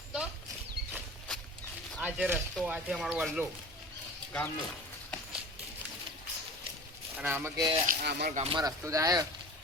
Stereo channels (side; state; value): both; normal; correlation 0.39